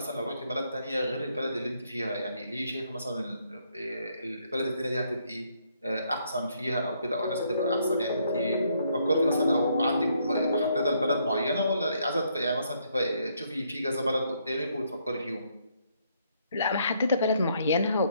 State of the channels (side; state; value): both; inverted; correlation -0.72